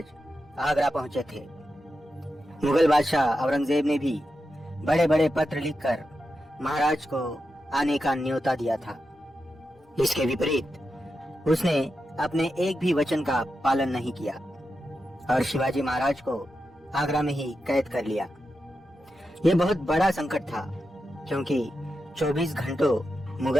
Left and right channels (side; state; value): both; normal; correlation 0.89